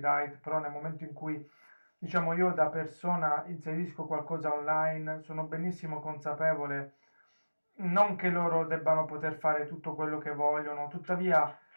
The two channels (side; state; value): both; inverted; correlation -1.00